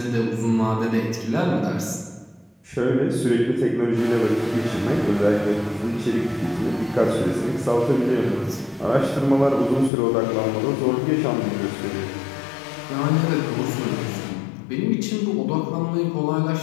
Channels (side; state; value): right; drops out; at 9.9 s